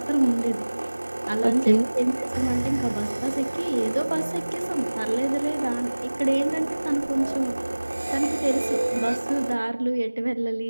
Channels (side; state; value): both; inverted; correlation -1.00